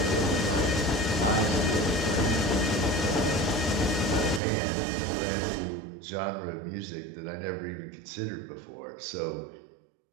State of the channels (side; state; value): left; drops out; at 4.4 s